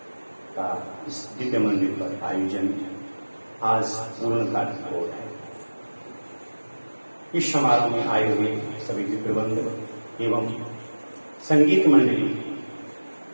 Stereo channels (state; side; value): inverted; both; correlation -1.00